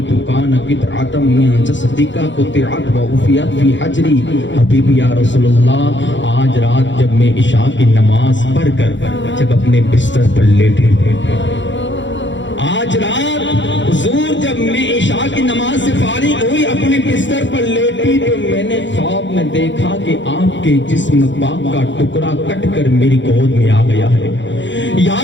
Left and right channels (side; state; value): right; late; 0.54 ms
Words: کان قطعۃ من جسدک قطعت وعفیت فی حجری، حبیبی یا رسول اللہ آج رات جب میں عشاء کی نماز پڑھ کر جب اپنے بستر پر لیٹے، آج رات حضور جب میں عشاء کی نماز سے فارغ ہوئی اپنے بستر پر لیٹی تو میں نے خواب میں دیکھا کہ آپ کے جسم پاک کا ٹکڑا کٹ کر میری گود میں آ گیا ہے۔ یا